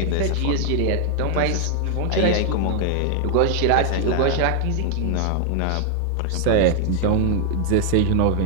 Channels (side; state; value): both; different; correlation 0.00